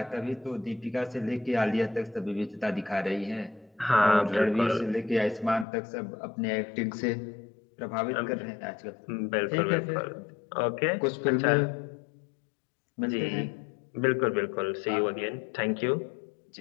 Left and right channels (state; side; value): drops out; right; at 5.7 s